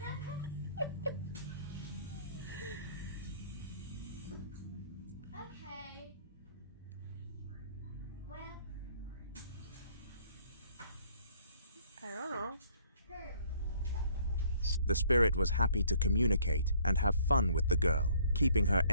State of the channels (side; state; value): both; inverted; correlation -0.60